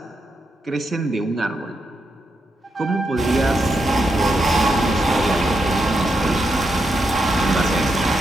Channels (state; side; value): normal; both; correlation 0.83